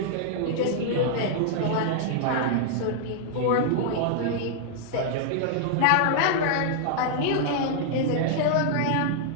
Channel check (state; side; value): different; both; correlation -0.01